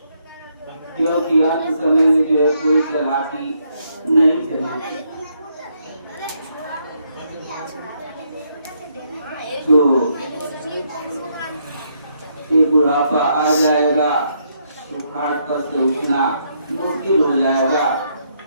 क्योंकि अंत समय में जो है कोई चालाकी नहीं चलेगी। तो ये बुढ़ापा आ जाएगा तो खाट पर से उठना मुश्किल हो जाएगा,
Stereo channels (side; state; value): both; inverted; correlation -0.75